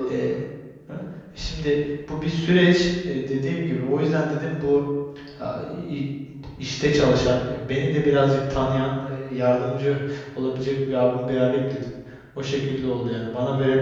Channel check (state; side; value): identical; both; correlation 1.00